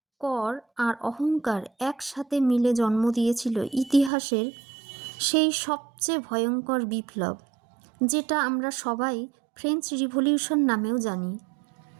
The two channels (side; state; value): left; drops out; at 4.1 s